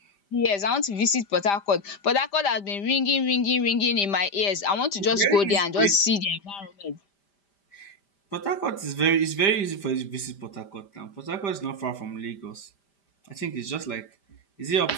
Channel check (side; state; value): right; late; 5.0 ms